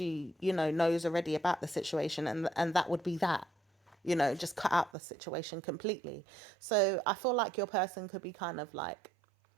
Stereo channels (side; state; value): left; drops out; at 4.9 s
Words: you know, knows already about the situation, and that would be that, you know, just cut out the situation completely. So I feel like your person could be kind of like